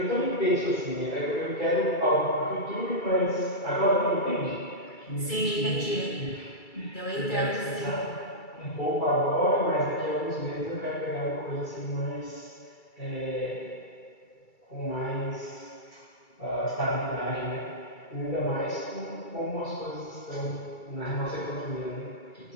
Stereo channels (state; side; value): late; right; 2.3 ms